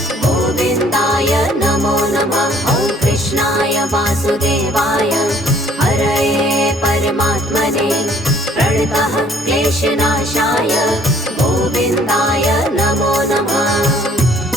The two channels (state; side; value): normal; both; correlation 0.59